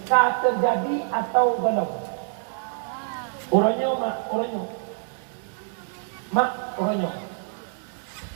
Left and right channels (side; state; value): left; silent; 61 dB below the other